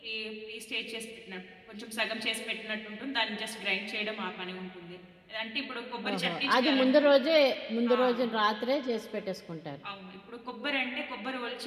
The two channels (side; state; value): both; identical; correlation 1.00